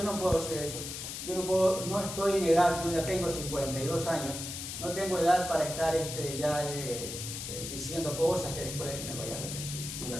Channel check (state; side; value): noise; left; hiss, 7 dB below the sound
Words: no puedo hacer eso. No estoy en edad, yo ya tengo 52 años, no tengo edad para estar diciendo cosas que después me vaya a arrepentir. De